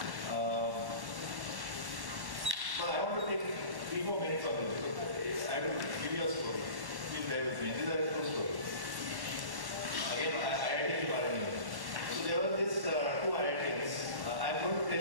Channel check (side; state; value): left; late; 1.1 ms